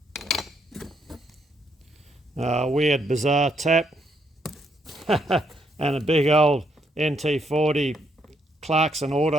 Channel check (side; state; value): both; normal; correlation 0.74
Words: Weird bizarre tap and a big old NT40 Clarkson